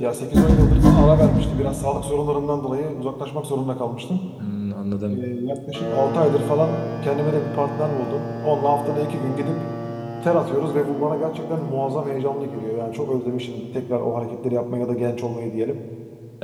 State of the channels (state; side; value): identical; both; correlation 1.00